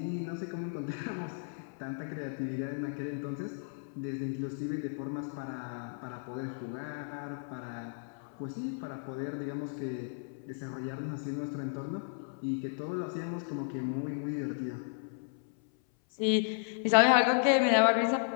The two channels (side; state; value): right; silent; 55 dB below the other